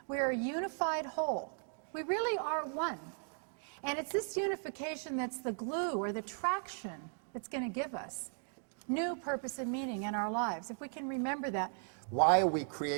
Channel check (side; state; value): left; silent; 53 dB below the other